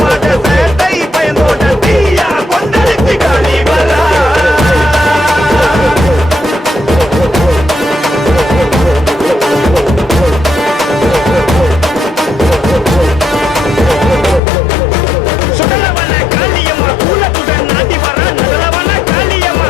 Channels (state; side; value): drops out; right; at 14.4 s